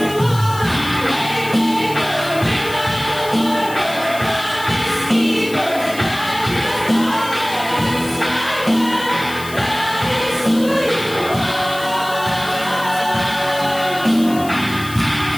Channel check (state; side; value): noise; left; hiss, 15 dB below the sound